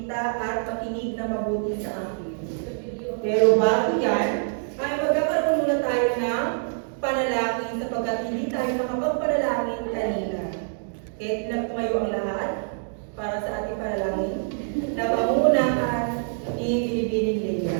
at makinig na mabuti sa akin. Pero bago yan, ay magkakaroon muna tayo ng panalangin sapagkat hindi tayo nakapagpanalangin kanina. Kaya tumayo ang lahat para sa ating panalangin na pangungunahan ni Binibining Leia.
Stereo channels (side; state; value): left; silent; digital silence